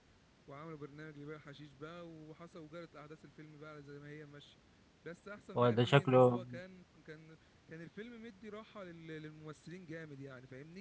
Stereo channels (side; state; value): both; identical; correlation 1.00